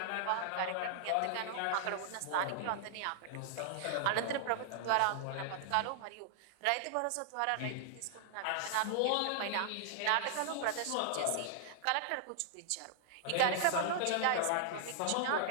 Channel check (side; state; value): both; different; correlation -0.01